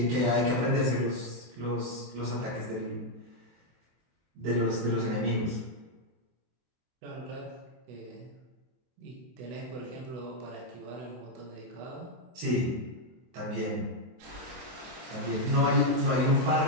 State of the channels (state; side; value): late; left; 24 ms